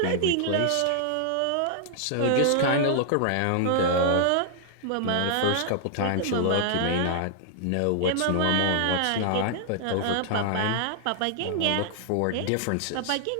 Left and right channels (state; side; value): different; both; correlation -0.01